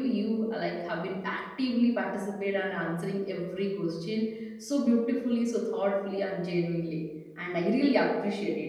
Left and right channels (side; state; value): both; identical; correlation 1.00